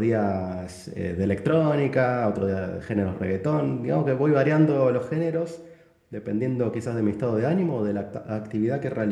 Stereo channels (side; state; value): both; identical; correlation 1.00